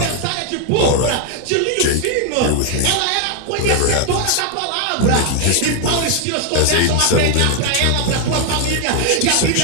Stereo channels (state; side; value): different; both; correlation 0.00